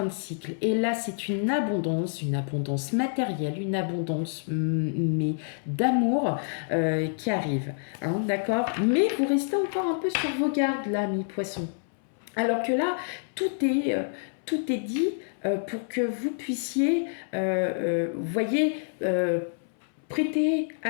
de cycle. Et là, c'est une abondance matérielle, une abondance mais d'amour qui arrive. Hein, d'accord? Mais vous restez encore un peu sur vos gardes, là, mi-poisson. Alors que là, tout est dit pour que vous puissiez, voyez, prêter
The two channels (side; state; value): right; silent; 60 dB below the other